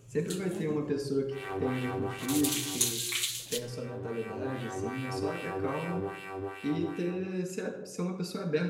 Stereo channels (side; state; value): both; identical; correlation 1.00